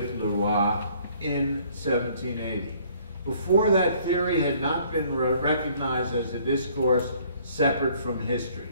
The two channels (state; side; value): inverted; both; correlation -0.59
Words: Leroy in 1780. Before that, theory had not been recognized as a discourse separate from history.